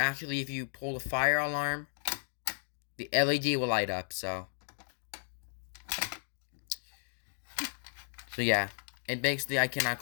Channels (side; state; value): right; silent; digital silence